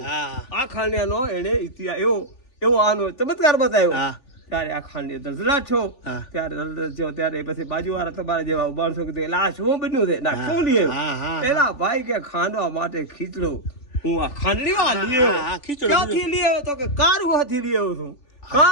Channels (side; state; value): right; late; 3.4 ms